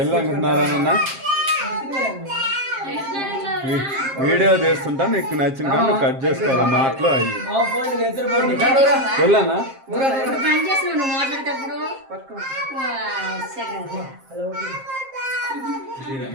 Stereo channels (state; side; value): late; left; 7.5 ms